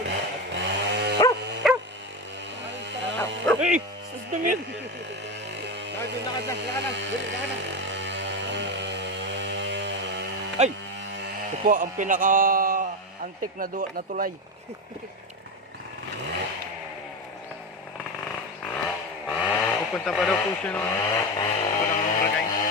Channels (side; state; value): both; normal; correlation 0.18